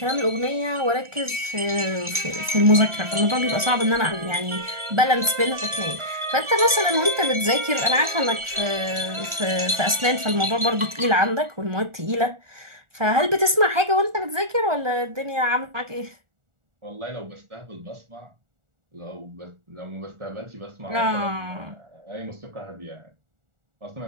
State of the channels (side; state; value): left; late; 1.4 ms